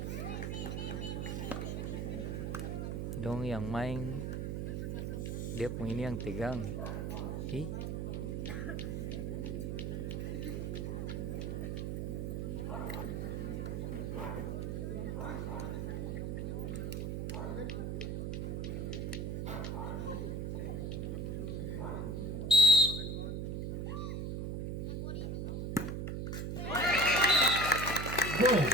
Dong yang main dia punya ini yang tegang. Ih. Gol.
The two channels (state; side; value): noise; right; hum, 2 dB below the sound